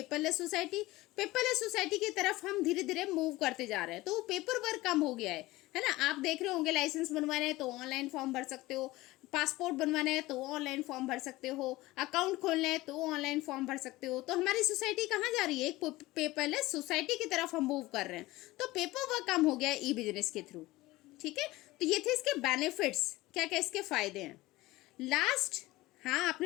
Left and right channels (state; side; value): quieter; right; 19.0 dB